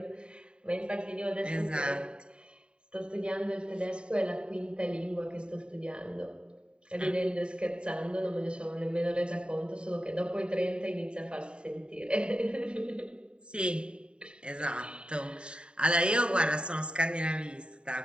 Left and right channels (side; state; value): left; late; 0.051 ms